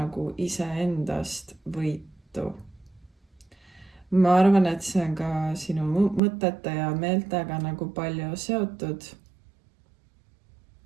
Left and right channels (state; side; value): drops out; left; at 6.2 s